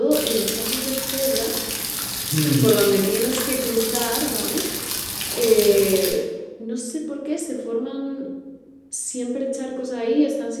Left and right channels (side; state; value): both; identical; correlation 1.00